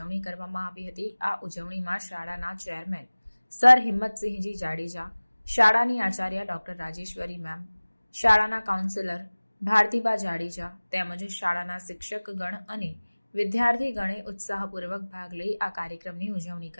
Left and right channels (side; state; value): both; inverted; correlation -1.00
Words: કરવામાં આવી હતી। આ ઉજવણીમાં શાળાના ચેરમેન સર હિંમતસિંહજી જાડેજા, શાળાની આચાર્ય ડોક્ટર રાજેશ્વરી મેમ, શાળાના કાઉન્સિલર ભારતીબા જાડેજા તેમજ શાળાના શિક્ષકગણ અને વિદ્યાર્થીગણે ઉત્સાહપૂર્વક ભાગ લઈ આ કાર્યક્રમની ઉજવણી